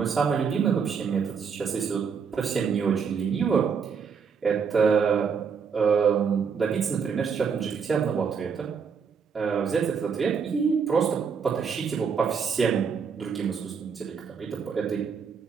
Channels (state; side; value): quieter; left; 6.2 dB